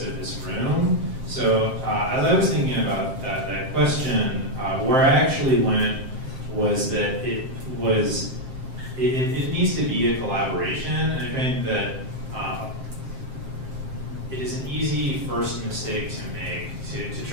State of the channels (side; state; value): left; late; 7.5 ms